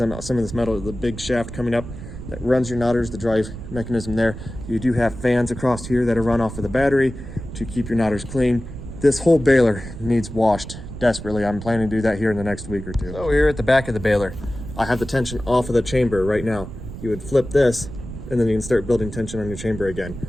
on some of this metal. The big shaft coming up that runs your knotters, the drive mechanism there. You do have fans across here that are run off of the battery to keep your knotters clean. This whole baler needs washed desperately. I'm planning to do that here in the next week or two. So here at the back of the baler, I have the tension off of the chamber right now. You would flip this and then you can start building tension on your chamber again.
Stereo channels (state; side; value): noise; right; rumble, 11 dB below the sound